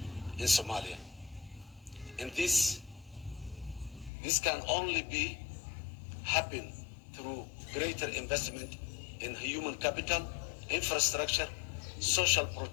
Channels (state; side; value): drops out; right; at 4.1 s